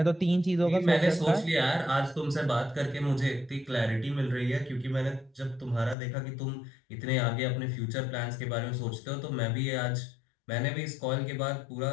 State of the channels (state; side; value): drops out; right; at 6.0 s